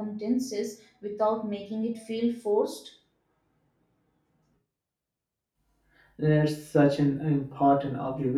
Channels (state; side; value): identical; both; correlation 1.00